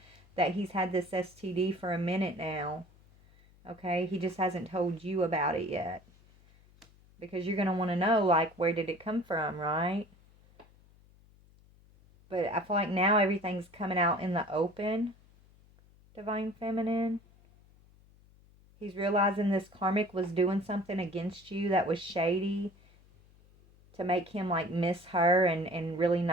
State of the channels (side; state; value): left; noise; hum, 28 dB below the sound